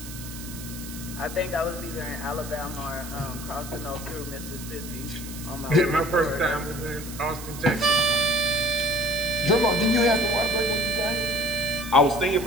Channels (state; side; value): noise; right; hiss, 13 dB below the sound